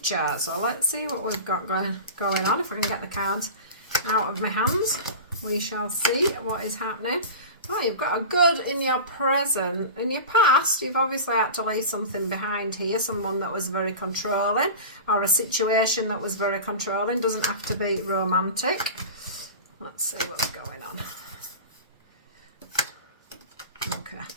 So let's see what we've got going on. If I can get the cards out of my hands, we shall see what is happening. Oh, you've got a good in your present. In your past, you've obviously had to leave something behind here, someone that was very controlling, or a situation that was very controlling. Doesn't have to be romantic. Let's see what's going on.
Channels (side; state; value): both; inverted; correlation -0.32